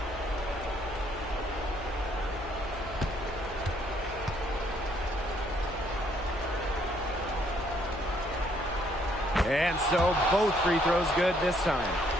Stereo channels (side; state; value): left; noise; hum, 14 dB below the sound